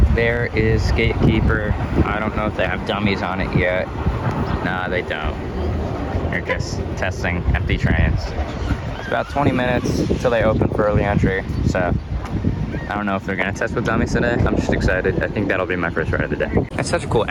There is Gatekeeper. I don't know if they have dummies on it yet. Nah, they don't. They're just testing empty trains. It's about 20 minutes until they open for early entry, so I don't know if they're gonna test with dummies today. I'm just excited. I think that'll be my first ride of the day. It's such a cool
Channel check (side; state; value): both; identical; correlation 1.00